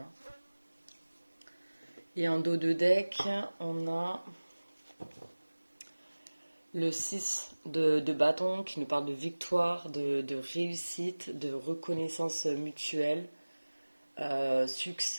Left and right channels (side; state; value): both; inverted; correlation -1.00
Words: hein. Et en dos de deck, on a le 6 de bâton qui nous parle de victoire, de réussite, de reconnaissance mutuelle,